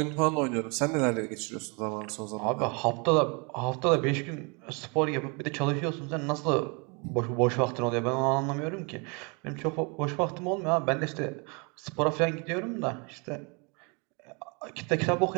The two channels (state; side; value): quieter; left; 32.1 dB